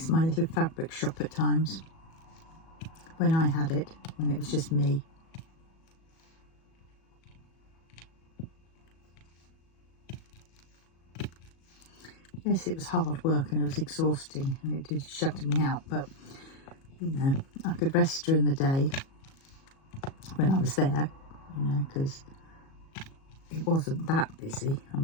my little fabric shop at times, when I had it, when it was just me. Yes, it was hard work and it was exhausting and it did shut me out, but you know, I could rest during the day when I was there, you know, because it wasn't that busy. I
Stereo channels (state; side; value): late; right; 37 ms